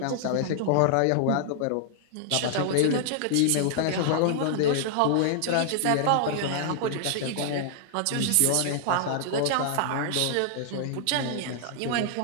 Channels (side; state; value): both; different; correlation -0.01